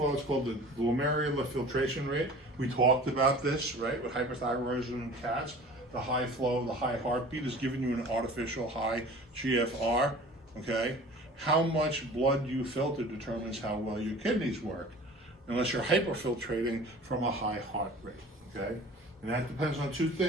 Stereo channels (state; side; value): normal; both; correlation 0.43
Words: It's called the glomerular filtration rate. We talked about this, right, with hyperthyroidism in cats. The high flow, the high heartbeat is giving you an artificial high GFR, okay? How much blood you filter determines how well your kidneys work, unless you're hyperfiltrating from a high heart rate, okay? And that depends on two